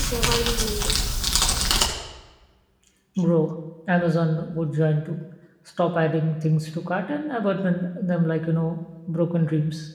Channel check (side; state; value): both; identical; correlation 1.00